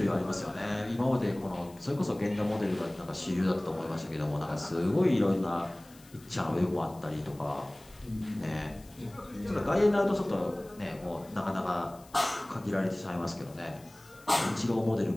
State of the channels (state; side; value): noise; left; hiss, 25 dB below the sound